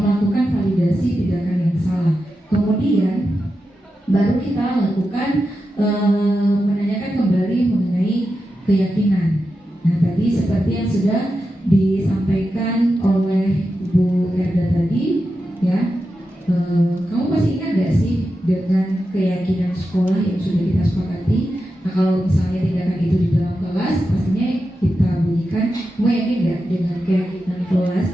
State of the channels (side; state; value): both; normal; correlation 0.90